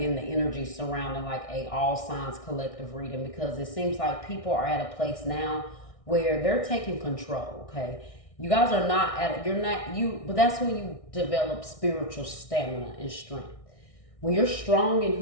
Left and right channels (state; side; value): late; right; 1.6 ms